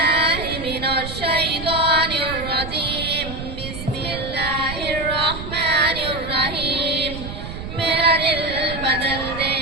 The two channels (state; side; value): noise; right; rumble, 9 dB below the sound